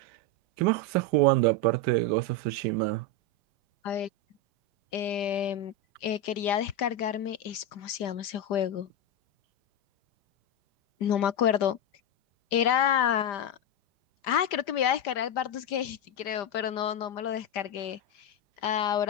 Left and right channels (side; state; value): right; late; 5.0 ms